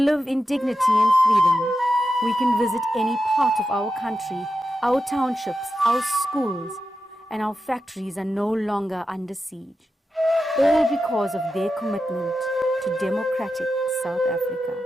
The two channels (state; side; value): normal; both; correlation 0.90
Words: live in dignity and freedom. We can visit any part of our country, our townships, our schools, and our factories are no longer under siege. All because of their commitment to democratic South Africa.